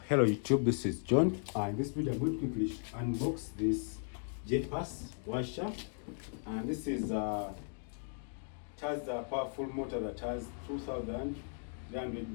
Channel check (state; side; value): silent; right; 53 dB below the other